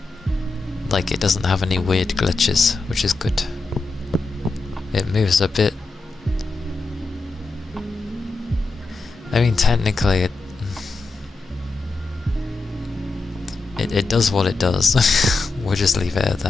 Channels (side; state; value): right; quieter; 3.6 dB